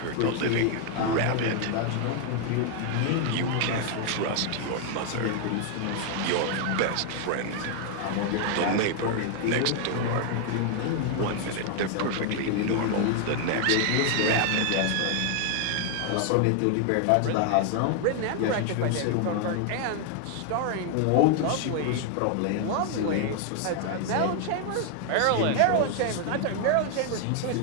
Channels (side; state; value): both; different; correlation 0.00